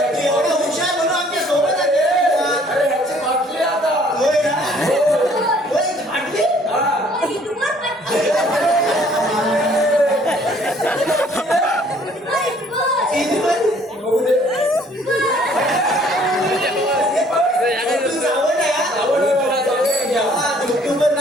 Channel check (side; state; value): both; normal; correlation 0.59